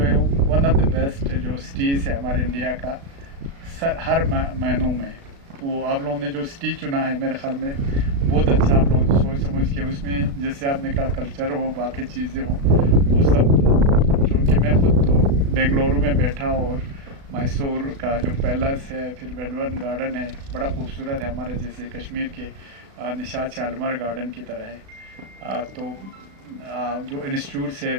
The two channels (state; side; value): late; left; 36 ms